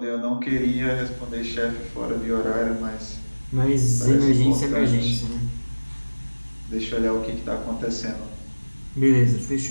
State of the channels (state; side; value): inverted; both; correlation -1.00